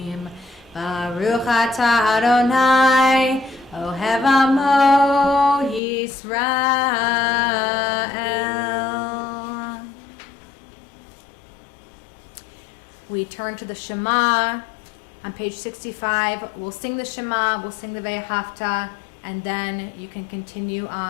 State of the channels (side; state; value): right; drops out; at 5.8 s